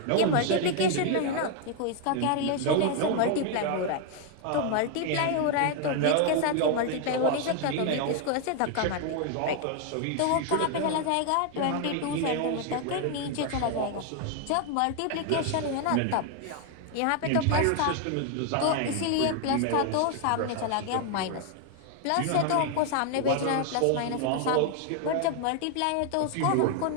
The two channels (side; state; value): both; different; correlation 0.00